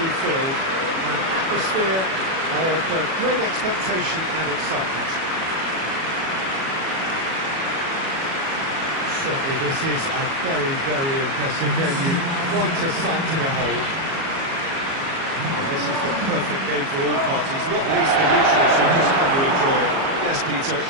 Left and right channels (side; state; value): left; late; 37 ms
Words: filled. An atmosphere of great expectation and excitement. Certainly this is a very, very impressive venue, quite a sight to behold. Well, this is the perfect game for all parties, not least the neutrals who've just come to enjoy it. Yes, Peter,